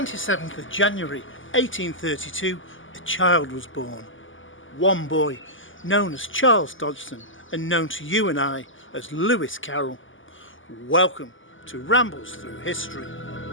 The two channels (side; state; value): right; late; 0.57 ms